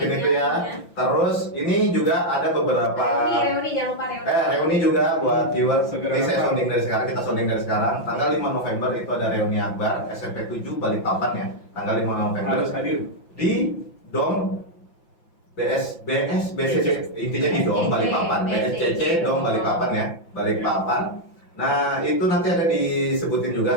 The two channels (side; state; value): right; late; 5.8 ms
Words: itu ya. Terus ini juga ada beberapa Reuni jangan lupa reuni. reuni juga buat viewer. Segera Ini saya datang. sounding dari sekarang, kita sounding dari sekarang. Tanggal 5 November itu ada reuni akbar SMP 7 Balikpapan ya. Tanggal 5 November Harus hadir. di Dom BSCC intinya di Dom Balikpapan, BSCC Dom Balikpapan ya, Balikpapan. Nah itu nanti ada disebutin